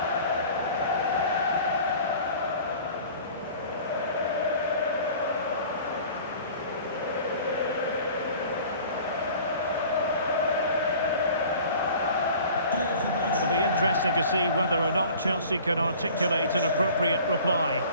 It'll be interesting to see whether or not Chelsea can articulate an appropriate reply.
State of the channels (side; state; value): both; inverted; correlation -0.46